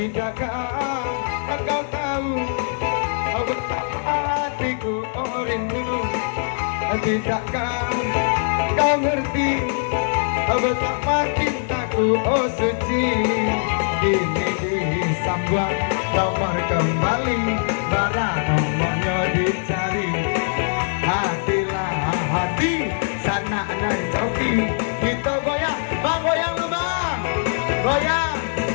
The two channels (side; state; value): right; silent; digital silence